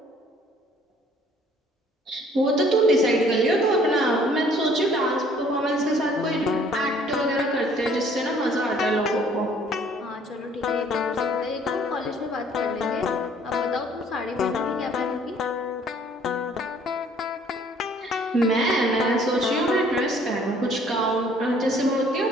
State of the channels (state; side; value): normal; both; correlation 0.58